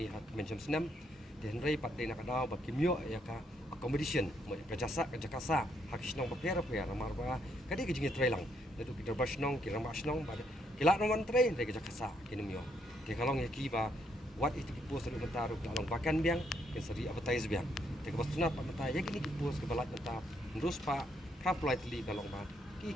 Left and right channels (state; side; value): normal; both; correlation 0.73